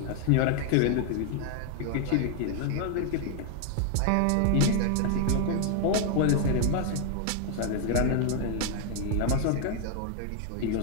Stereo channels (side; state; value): both; different; correlation 0.00